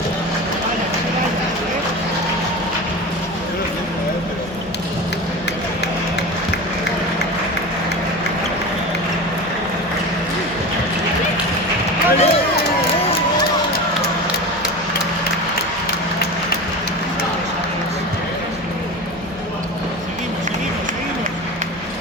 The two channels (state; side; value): normal; both; correlation 0.29